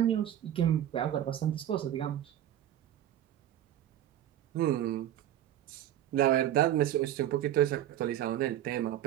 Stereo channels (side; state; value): left; quieter; 11.7 dB